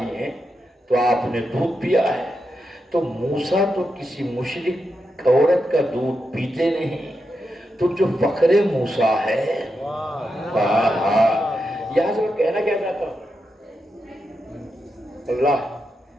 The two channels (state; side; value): normal; both; correlation 0.86